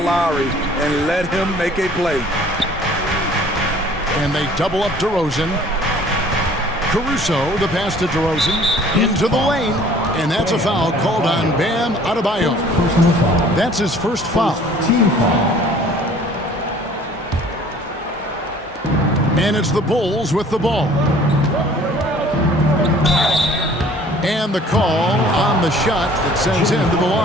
and let him make a play. And they double up DeRozan. Caruso, the pass to DeRozan, into the lane. And that's a foul called on Bam Adebayo. That's his first foul. Team foul. And it's the Bulls with the ball. And the call on the shot that sends him to the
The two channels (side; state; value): both; normal; correlation 0.52